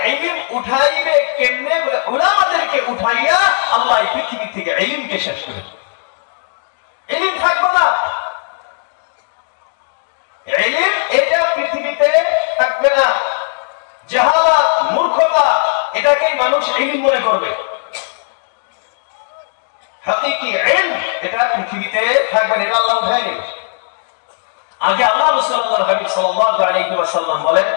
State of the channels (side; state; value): right; silent; digital silence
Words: ইলম উঠাইবে কেমনে? বলে উলামাদেরকে উঠাইয়া আল্লাহ এই পৃথিবী থেকে ইলমকে শেষ করে দেবে। ইলম থাকবে না, ইলম এটা পৃথিবীতে থাকবে না। জাহালাত, মূর্খতা, এটাকেই মানুষ ইলম মনে করবে। হাকিকি ইলম এটা পৃথিবীতে থাকবে না, এটা আল্লাহ উঠায় নেবে। আগে আল্লাহ রাসূল আল্লাহর হাবিব সাল্লাল্লাহু আলাইহি ওয়াসাল্লাম বলেন,